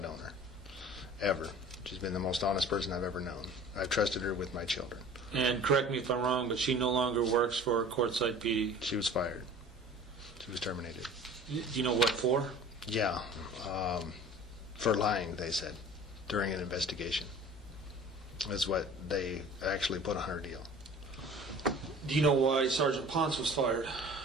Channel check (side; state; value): both; normal; correlation 0.43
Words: known her, ever. She's been the most honest person I've ever known. I've trusted her with my children. And correct me if I'm wrong, but she no longer works for Quartzsite PD. She was fired. She was terminated. Do you know what for? Yeah, for lying, they said, during an investigation. Is what they actually put on her deal. Do you know why Sergeant Ponce was fired?